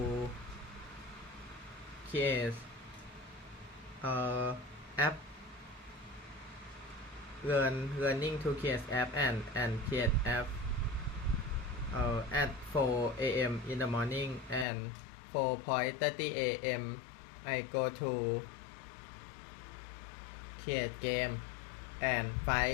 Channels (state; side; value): drops out; right; at 14.7 s